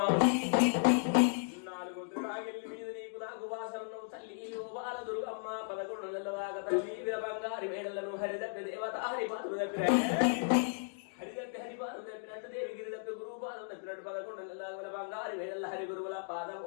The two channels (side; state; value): right; silent; digital silence